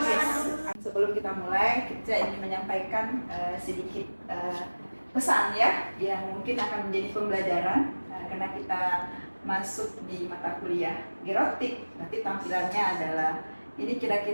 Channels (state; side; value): inverted; both; correlation -1.00